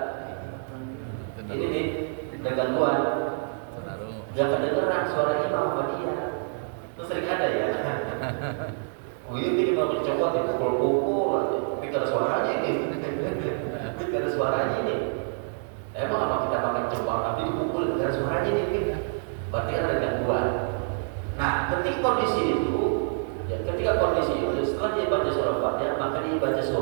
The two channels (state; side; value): silent; left; digital silence